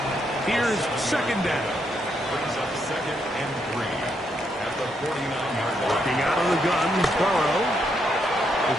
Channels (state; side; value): normal; both; correlation 0.77